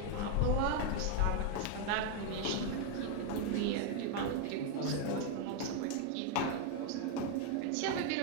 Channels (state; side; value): different; both; correlation 0.01